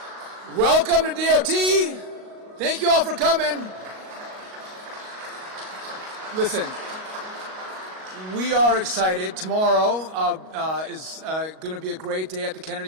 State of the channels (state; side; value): late; left; 38 ms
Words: Welcome to DOT. Thank you all for coming. Listen, we are excited. Tomorrow is going to be a great day at the